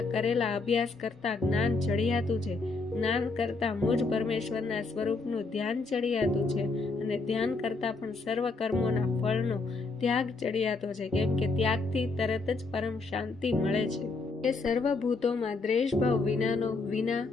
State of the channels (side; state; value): right; quieter; 3.8 dB